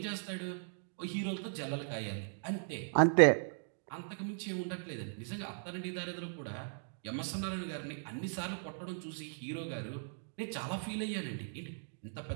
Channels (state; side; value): silent; left; digital silence